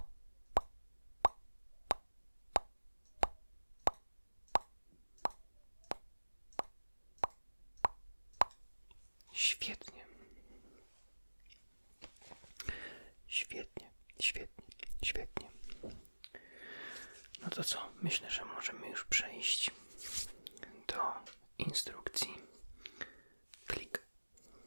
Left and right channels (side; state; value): both; inverted; correlation -1.00